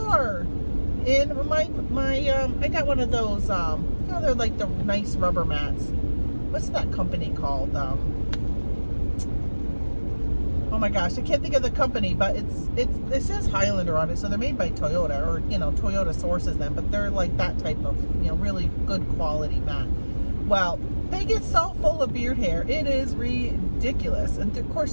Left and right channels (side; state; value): both; inverted; correlation -1.00